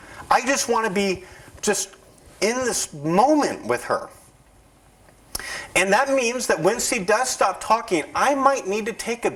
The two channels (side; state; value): both; identical; correlation 1.00